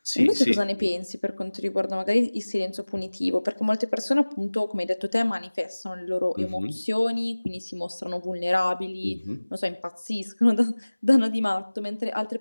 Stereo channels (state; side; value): inverted; both; correlation -1.00